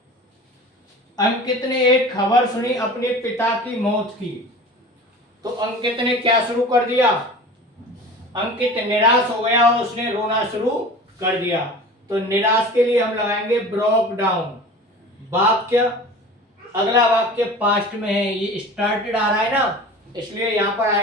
Ankit ने एक खबर सुनी अपने पिता की मौत की, तो अंकित ने क्या शुरू कर दिया? अंकित निराश हो गया और उसने रोना शुरू कर दिया। तो निराश के लिए हम लगाएंगे ब्रोक डाउन। वाक्य, अगला वाक्य पास्ट में है, ये स्टार्टेड आ रहा है ना, इसलिए यहां पर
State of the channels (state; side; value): normal; both; correlation 0.38